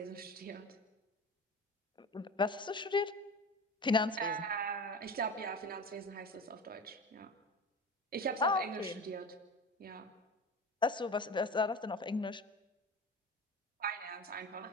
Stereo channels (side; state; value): both; normal; correlation 0.32